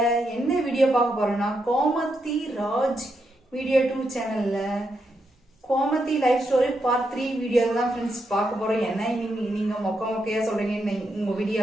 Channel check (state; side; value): normal; both; correlation 0.82